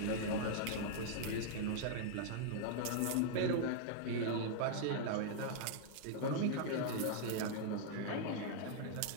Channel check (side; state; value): both; different; correlation -0.01